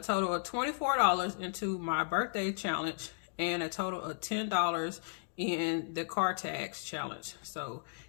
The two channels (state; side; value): silent; right; digital silence